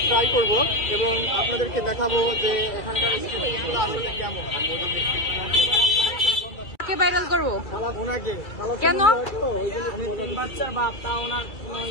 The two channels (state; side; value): late; right; 2.3 ms